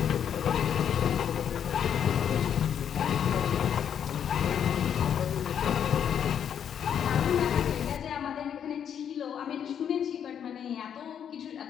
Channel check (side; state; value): right; quieter; 8.6 dB